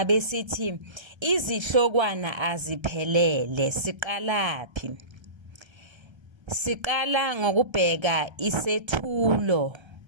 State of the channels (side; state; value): left; late; 1.3 ms